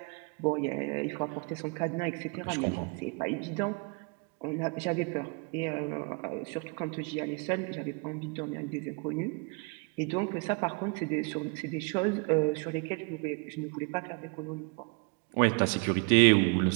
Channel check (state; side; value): quieter; left; 33.9 dB